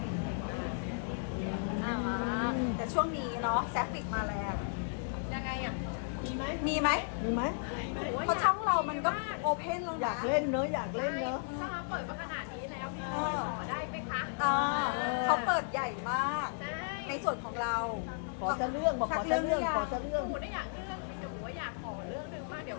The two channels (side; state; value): right; silent; digital silence